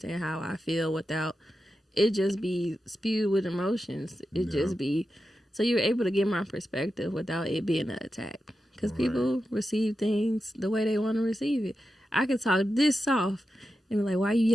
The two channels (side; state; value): both; normal; correlation 0.90